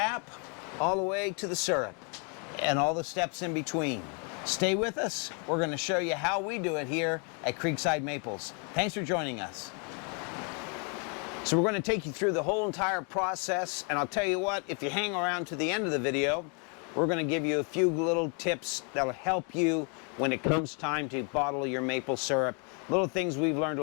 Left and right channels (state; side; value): quieter; right; 37.4 dB